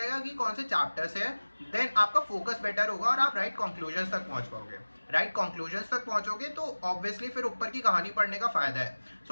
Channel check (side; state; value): both; inverted; correlation -1.00